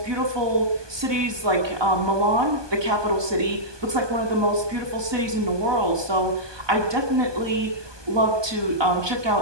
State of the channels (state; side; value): late; left; 1.2 ms